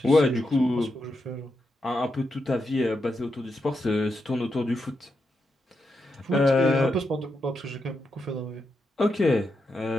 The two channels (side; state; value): both; normal; correlation 0.85